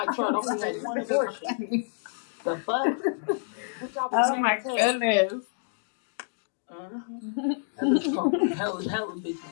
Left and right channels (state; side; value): silent; right; digital silence